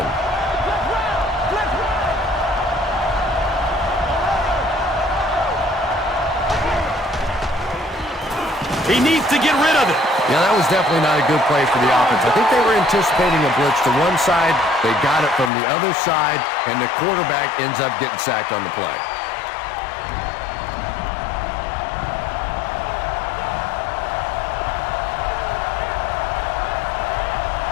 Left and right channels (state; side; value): drops out; right; at 15.5 s